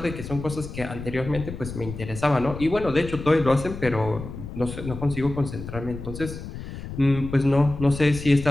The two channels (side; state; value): left; noise; rumble, 10 dB below the sound